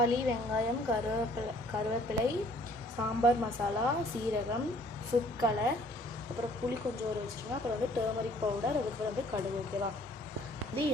வெங்காயம், கருவேப்பிலை, சாம்பார் மசாலா, சீரகம், ஃபுட் கலர், அப்புறம் புளி கொஞ்சம் ஊற வச்சுருங்க. அப்புறம் வந்து டர்மரிக் பவுடர், அதுக்கப்புறம் வந்து கடுகு. ஓகேவா? இது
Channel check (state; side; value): normal; both; correlation 0.58